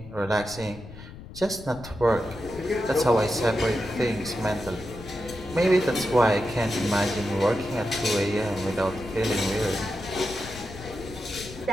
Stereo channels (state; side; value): noise; left; rumble, 15 dB below the sound